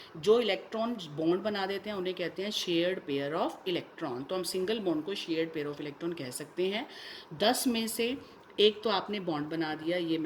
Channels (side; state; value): both; identical; correlation 1.00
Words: जो इलेक्ट्रॉन बॉन्ड बना देते हैं उन्हें कहते हैं शेयर्ड पेयर ऑफ इलेक्ट्रॉन। तो हम सिंगल बॉन्ड को शेयर्ड पेयर ऑफ इलेक्ट्रॉन कह सकते हैं। 10 में से एक तो आपने बॉन्ड बना दिया, ये